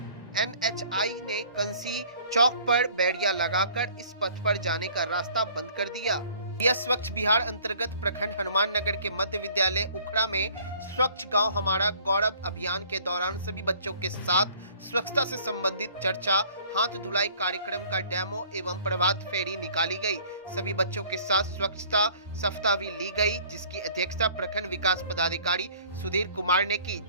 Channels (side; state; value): both; inverted; correlation -0.53